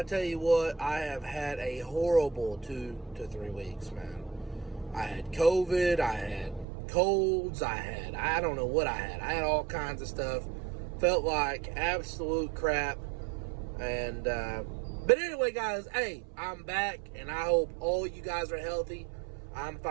tell you what, I have had a horrible 2 to 3 weeks, man. I had COVID, I had colds, I don't know what I had. I had all kinds of stuff. Felt like absolute crap. But anyway, guys, hey, I'm back, and I hope all you guys are healthy. I'm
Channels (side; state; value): left; drops out; at 6.7 s